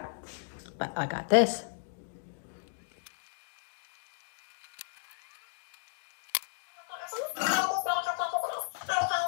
but I got this.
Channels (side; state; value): right; silent; digital silence